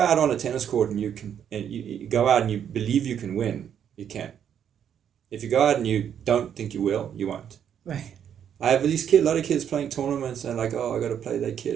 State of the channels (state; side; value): quieter; left; 8.9 dB